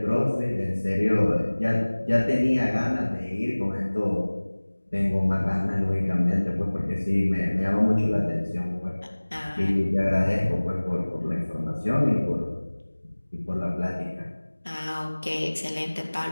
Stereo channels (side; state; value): both; inverted; correlation -1.00